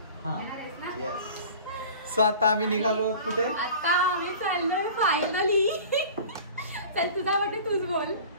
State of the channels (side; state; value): both; inverted; correlation -0.41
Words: सो आता आम्ही निघालो कुठे? आता आम्ही चाललोय फायनली. चल तुझा वाटते तूच बोल.